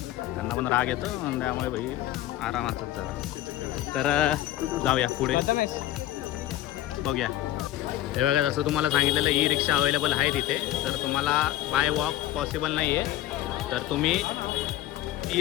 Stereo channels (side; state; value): right; quieter; 14.2 dB